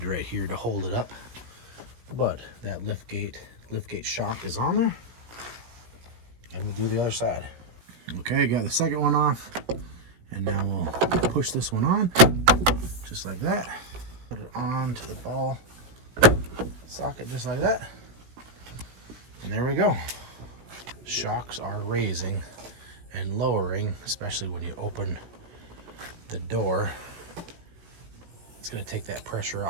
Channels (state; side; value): late; left; 17 ms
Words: right here to hold it up, but that liftgate shock is on there, and we'll do the other side. Okay, got the second one off, and now we'll push this one on, just like that. Put it on to the ball socket, just like that. And there we go. Shocks are raising and lowering, especially when you open the door. It's gonna take that pressure